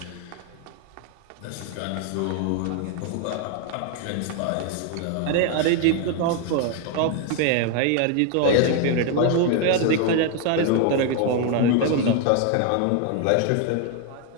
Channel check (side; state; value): both; different; correlation 0.01